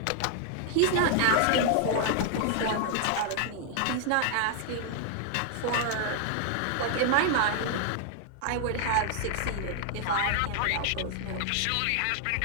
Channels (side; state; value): both; different; correlation 0.00